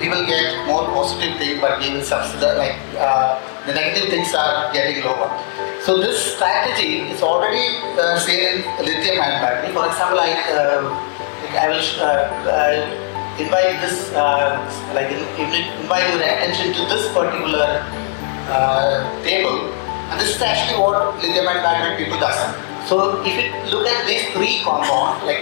will get more positive thing, but we will subsidize, like the negative things are getting lower. So this strategy is already seen in lithium-ion battery. For example, I will invite this, invite your attention to this particular table, and this is actually what lithium-ion battery people does. So if you look at these 3 compounds,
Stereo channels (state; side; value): silent; right; 58 dB below the other